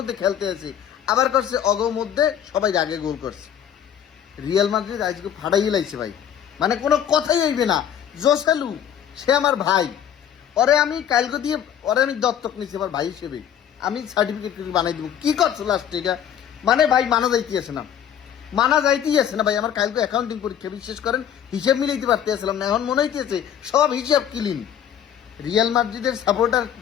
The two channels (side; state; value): right; quieter; 9.4 dB